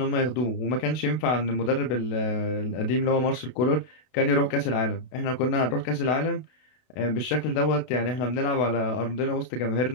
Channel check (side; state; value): right; late; 32 ms